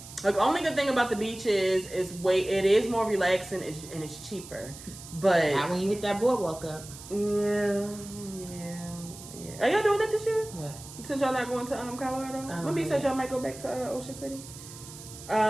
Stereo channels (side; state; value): right; noise; hiss, 15 dB below the sound